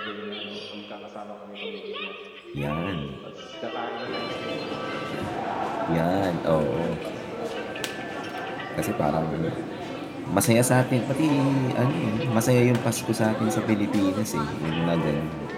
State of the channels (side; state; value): both; identical; correlation 1.00